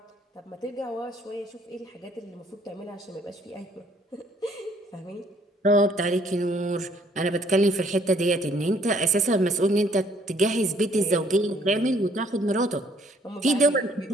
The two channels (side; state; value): both; normal; correlation 0.63